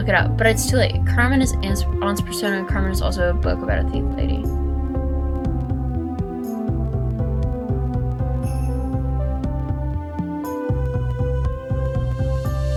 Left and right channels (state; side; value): identical; both; correlation 1.00